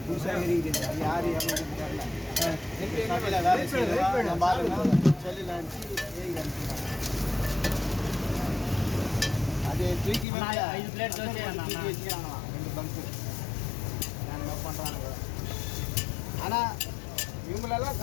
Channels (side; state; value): right; drops out; at 10.2 s